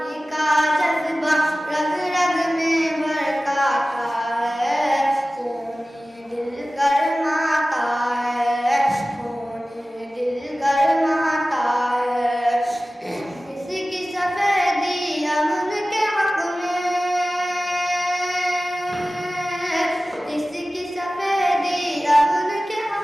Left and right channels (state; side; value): normal; both; correlation 0.97